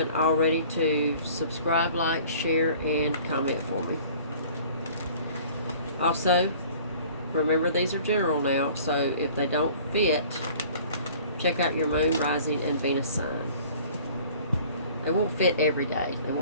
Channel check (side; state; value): both; inverted; correlation -0.49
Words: already, to subscribe, like, share, and comment for me. Also, remember these are general now, so if they don't fit, check out your moon, rising, and Venus sign. They won't fit every day. They